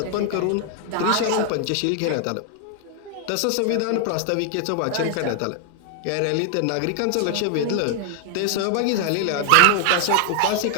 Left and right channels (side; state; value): both; different; correlation 0.00